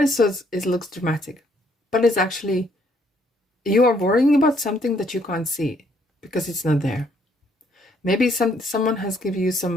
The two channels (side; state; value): both; normal; correlation 0.68